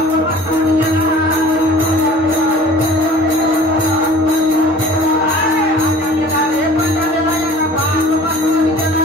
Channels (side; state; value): both; normal; correlation 0.46